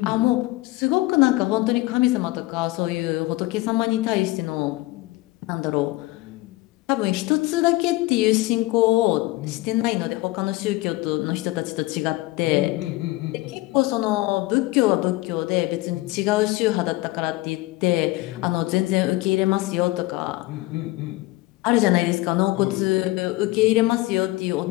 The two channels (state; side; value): quieter; right; 19.9 dB